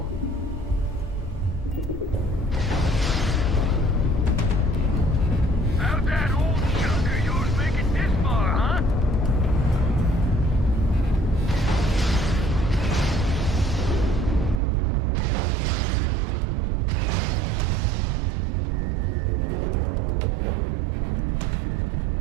How'd that old junk of yours make it this far, huh?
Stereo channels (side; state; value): left; drops out; at 14.6 s